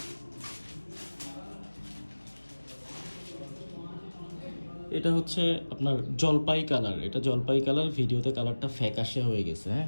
এটা হচ্ছে আপনার জলপাই কালার। এটা জলপাই কালার, ভিডিওতে কালারটা ফ্যাকাশে হয়ে গেছে।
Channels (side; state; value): both; inverted; correlation -1.00